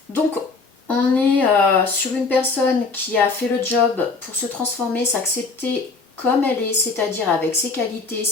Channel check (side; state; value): right; quieter; 4.1 dB